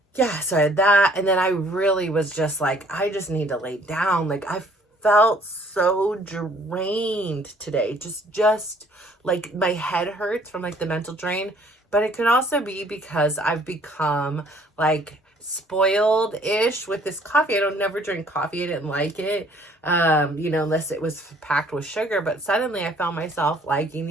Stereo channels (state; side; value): normal; both; correlation 0.59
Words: had that. And then I really was just like, I just need to lay down. Like I felt so drained today. Just like my head hurts from like the mental drain. But it could also be because I've become like spoiled-ish with this coffee. I don't never drink coffee. I didn't like it. Unless it was packed with sugar. But suddenly I found myself liking